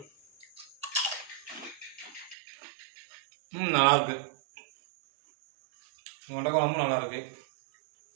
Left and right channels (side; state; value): left; drops out; at 2.4 s